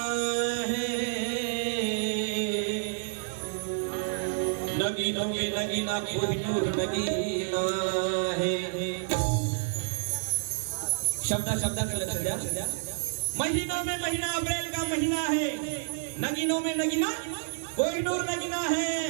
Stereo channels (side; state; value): left; silent; 58 dB below the other